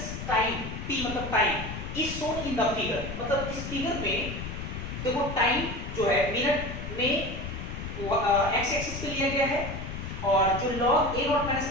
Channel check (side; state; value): left; noise; rumble, 7 dB below the sound